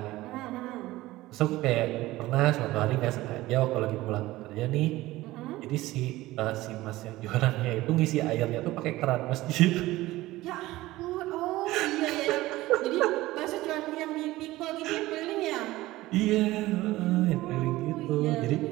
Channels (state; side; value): quieter; left; 17.7 dB